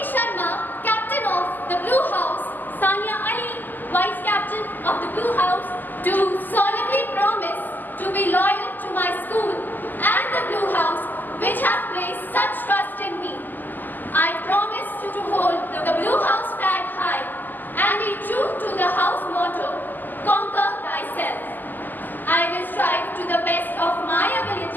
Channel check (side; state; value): right; late; 0.087 ms